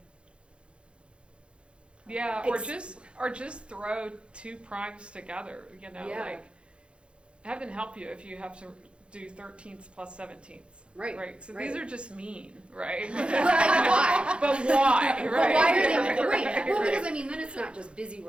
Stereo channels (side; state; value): left; late; 0.057 ms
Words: Yeah, or just throw 2 primes together, Yeah. have them help you if you have do 13ths plus 17ths. Right, Right, so right. these are just mean, right? Why? But why, But right? why are they, right, Right, well, right. because I mean, then it's not just busy